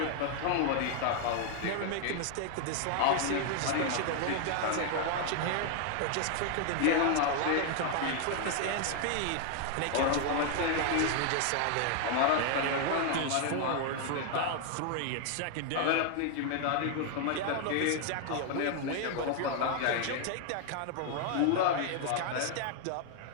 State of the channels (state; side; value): different; both; correlation 0.00